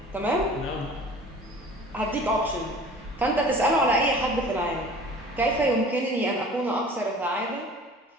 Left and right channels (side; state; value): both; normal; correlation 0.45